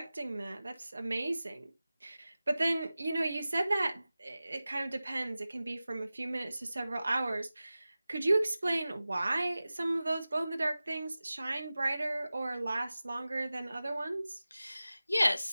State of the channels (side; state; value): both; inverted; correlation -0.96